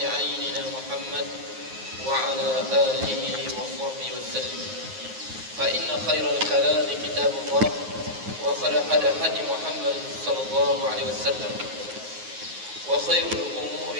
عيننا محمد وعلى آله وصحبه وسلم. فإن خير الكلام كتاب الله، وخير هدي محمد صلى الله عليه وسلم، وخير الأمور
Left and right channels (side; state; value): left; late; 9.5 ms